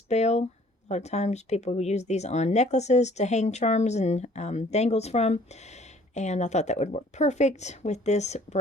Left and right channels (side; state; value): both; normal; correlation 0.56